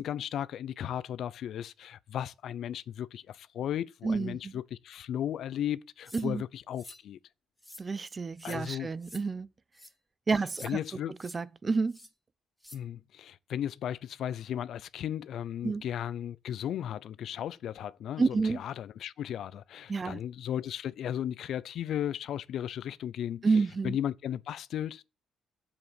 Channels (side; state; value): both; normal; correlation 0.74